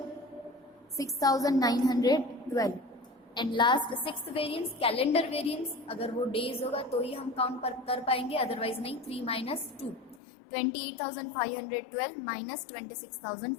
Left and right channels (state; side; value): drops out; right; at 10.2 s